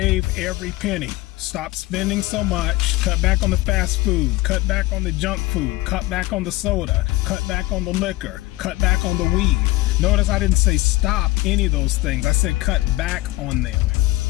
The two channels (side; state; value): right; quieter; 18.1 dB